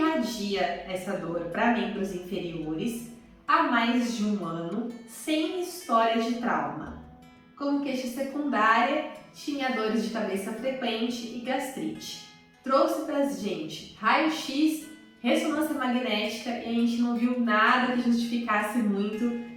essa dor para membros inferiores há mais de um ano, sem história de trauma. Como queixa secundária, tinha dores de cabeça frequente e gastrite. Trouxe pra gente raio-x, ressonância magnética e a gente não viu nada que justificasse muito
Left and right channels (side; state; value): both; identical; correlation 1.00